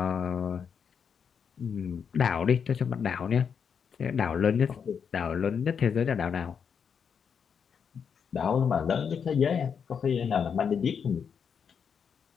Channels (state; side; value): quieter; right; 6.9 dB